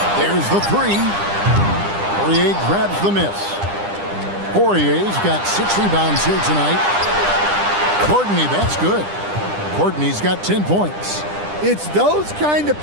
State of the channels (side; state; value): left; late; 10 ms